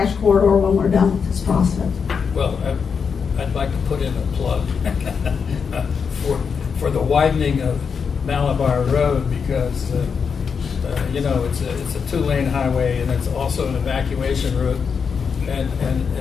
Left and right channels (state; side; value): quieter; right; 6.1 dB